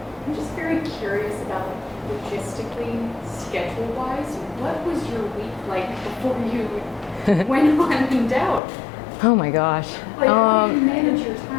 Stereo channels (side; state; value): right; drops out; at 8.6 s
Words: I'm just very curious about logistically, schedule-wise, what was your week like before you went on in doubt? Oh my gosh. Like, how do you manage your